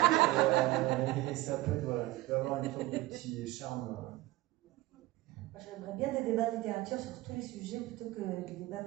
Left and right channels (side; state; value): left; quieter; 18.5 dB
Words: Et ça peut être, voilà, il peut avoir une sorte de petit charme. Moi, j'aimerais bien des débats de littérature sur tous les sujets plutôt que des débats